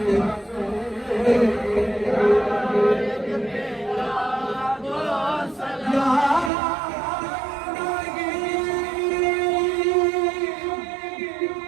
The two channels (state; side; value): drops out; left; at 6.5 s